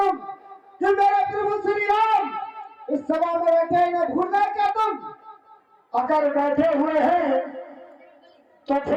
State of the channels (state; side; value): identical; both; correlation 1.00